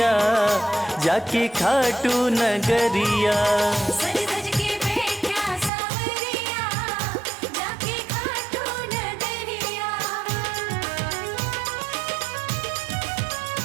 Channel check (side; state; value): left; drops out; at 5.7 s